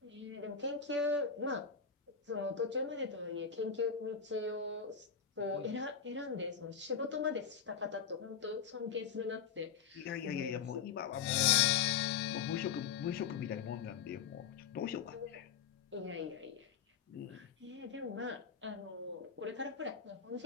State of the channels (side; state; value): right; quieter; 7.0 dB